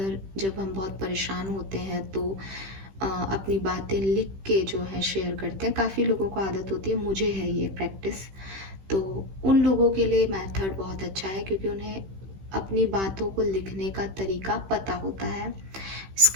जब हम बहुत परेशान होते हैं तो अपनी बातें लिख के जो है शेयर करते हैं। काफ़ी लोगों को आदत होती है, मुझे है ये प्रैक्टिस। तो उन लोगों के लिए मेथड बहुत अच्छा है, क्योंकि उन्हें अपनी बातों को लिखने का तरीका पता होता है।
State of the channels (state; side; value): late; left; 15 ms